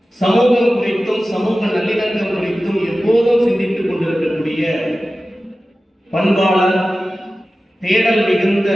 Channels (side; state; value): both; normal; correlation 0.95